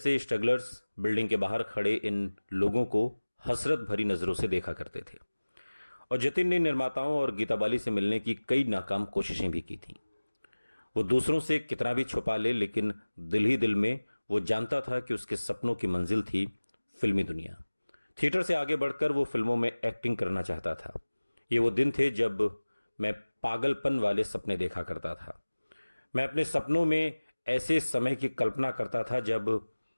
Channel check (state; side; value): inverted; both; correlation -1.00